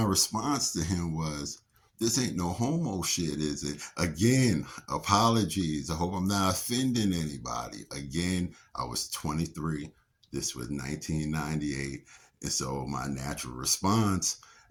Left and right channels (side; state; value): both; identical; correlation 1.00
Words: response to him was, "This ain't no homo shit, is it?" Again, apologies. I hope I'm not offending anybody. Again, I was 23. This was 1998. And so my natural response,